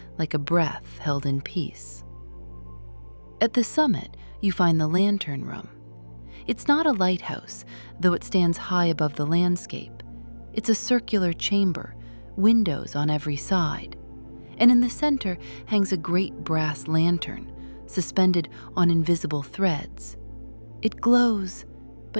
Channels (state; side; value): inverted; both; correlation -1.00